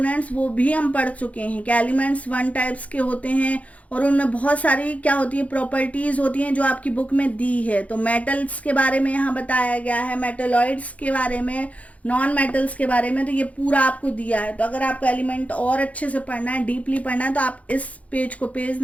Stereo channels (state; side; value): late; right; 0.067 ms